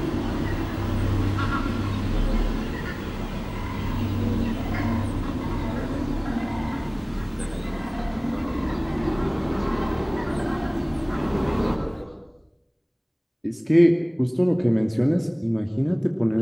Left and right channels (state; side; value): identical; both; correlation 1.00